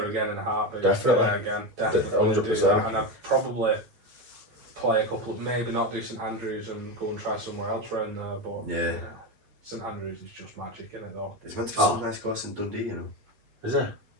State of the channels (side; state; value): left; late; 9.0 ms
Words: again in a heartbeat. Definitely. Yeah, again, definitely. 100%. Do that. And I'd probably play a couple of, maybe not do St Andrews and go and try somewhere else around there, but Yeah. St Andrews is just magic, isn't it though? There's meant to be some nice course in Dundee, you know. Is it?